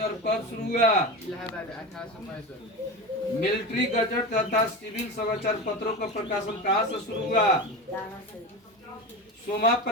कब शुरू हुआ? मिलिट्री गजट तथा सिविल समाचार पत्रों का प्रकाशन कहां से शुरू हुआ? सोमा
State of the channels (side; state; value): both; normal; correlation 0.25